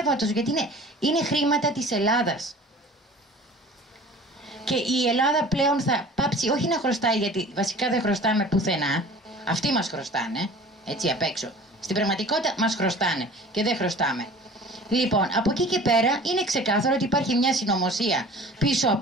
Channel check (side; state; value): both; normal; correlation 0.44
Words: γιατί είναι χρήματα της Ελλάδας. Και η Ελλάδα πλέον θα πάψει όχι να χρωστάει, γιατί βασικά δεν χρωστάμε πουθενά. Αυτοί μας χρωστάνε, έτσι απ' έξω. Στην πραγματικότητα μας χρωστάνε και δεν χρωστάμε. Λοιπόν, από εκεί και πέρα είναι ξεκάθαρο ότι υπάρχει μια συνωμοσία πίσω